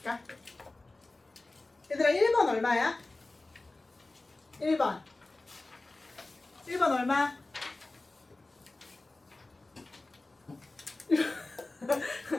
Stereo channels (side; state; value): right; quieter; 3.1 dB